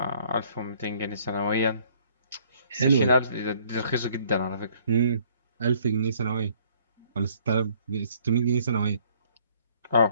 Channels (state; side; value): inverted; both; correlation -0.61